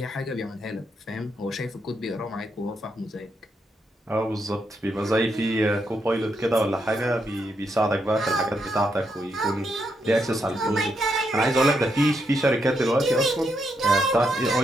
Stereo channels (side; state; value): both; normal; correlation 0.80